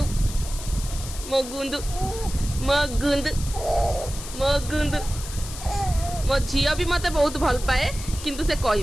मो गुंदु मो झील भी मते बहुत भल पाए किंतु से कहि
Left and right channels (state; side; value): noise; left; hiss, 11 dB below the sound